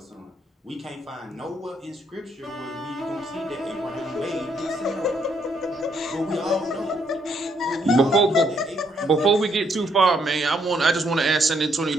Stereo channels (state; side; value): normal; both; correlation 0.72